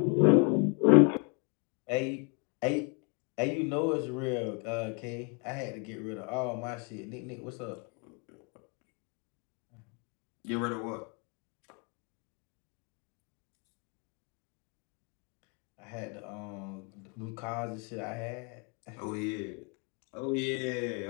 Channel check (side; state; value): right; quieter; 35.4 dB